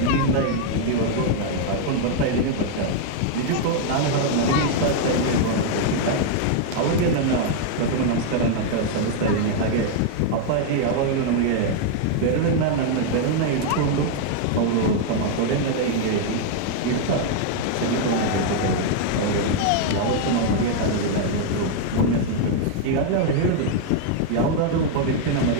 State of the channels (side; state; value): both; different; correlation 0.00